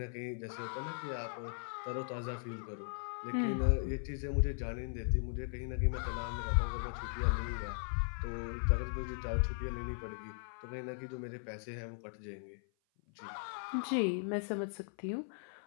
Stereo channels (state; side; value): silent; right; 52 dB below the other